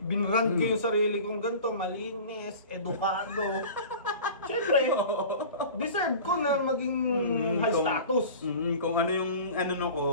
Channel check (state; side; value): inverted; both; correlation -0.39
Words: Binrand ko yung sarili kong ganito, malinis, edukado. Siyempre, deserve ko na maging high status. Kung ano yung